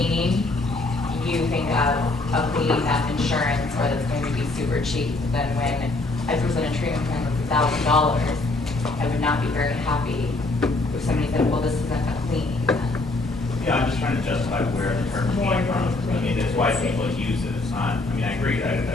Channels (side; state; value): right; quieter; 3.1 dB